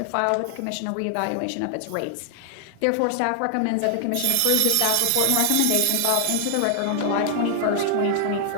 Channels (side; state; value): both; different; correlation 0.00